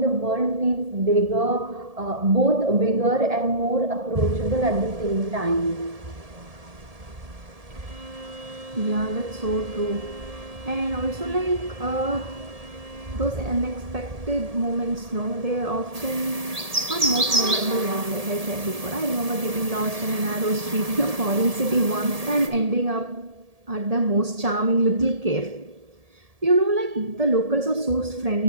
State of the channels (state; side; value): late; left; 1.7 ms